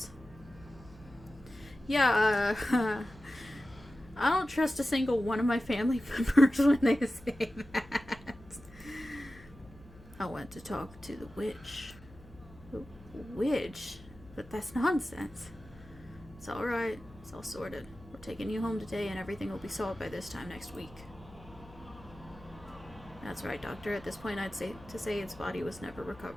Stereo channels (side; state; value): left; noise; hum, 21 dB below the sound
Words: Yeah, I don't trust a single one of my family members when they say that. I went to talk to the witch. Witch? But that's nonsense. It's alright. It's all sorted. We're taking you home today and everything will be solved by this time next week. That's right, Doctor. At this point, I'd say its body was never